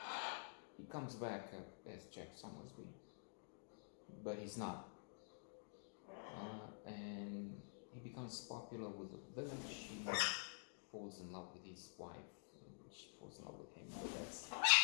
He comes back as Jack Sommersby, but he's not. And he becomes popular with the village. He falls in love with his wife. She falls in love with him. But that's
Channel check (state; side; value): silent; right; digital silence